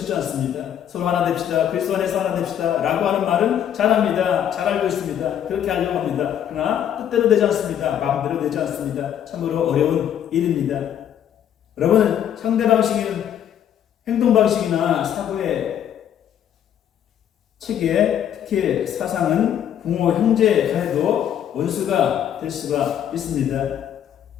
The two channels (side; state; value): right; quieter; 9.8 dB